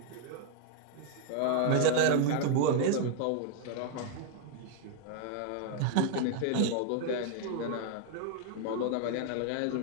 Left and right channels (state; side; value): different; both; correlation 0.00